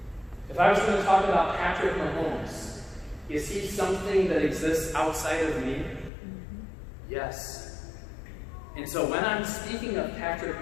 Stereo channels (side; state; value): right; drops out; at 6.1 s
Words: If I was going to talk about Patrick Mahomes, is he something that exists outside of me? Yes. And so when I'm speaking of Patrick